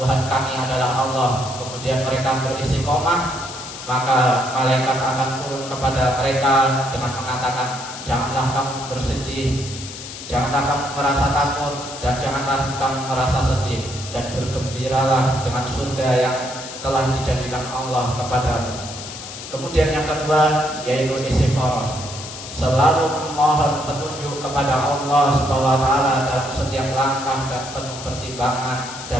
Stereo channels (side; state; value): left; noise; hiss, 11 dB below the sound